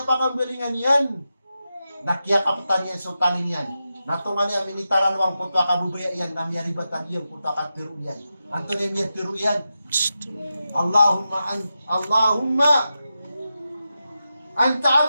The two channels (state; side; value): inverted; both; correlation -0.90